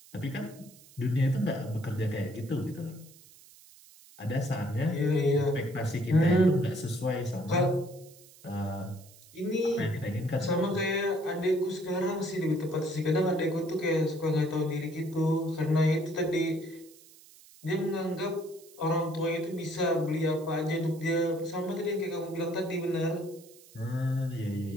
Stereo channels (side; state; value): right; noise; hiss, 23 dB below the sound